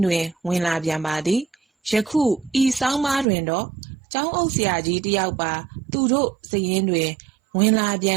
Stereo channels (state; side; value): drops out; left; at 3.2 s